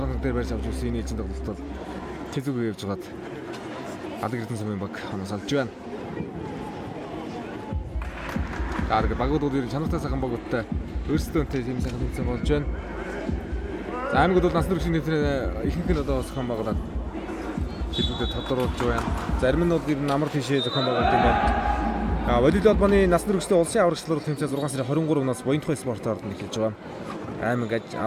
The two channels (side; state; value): both; identical; correlation 1.00